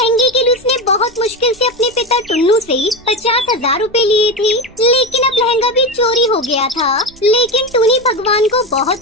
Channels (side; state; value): right; noise; rumble, 26 dB below the sound